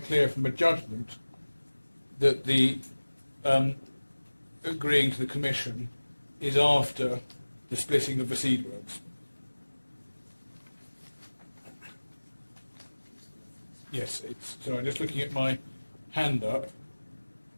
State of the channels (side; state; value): both; inverted; correlation -1.00